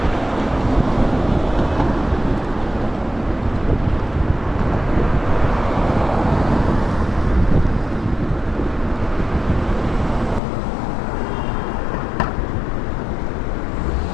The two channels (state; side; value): drops out; right; at 10.4 s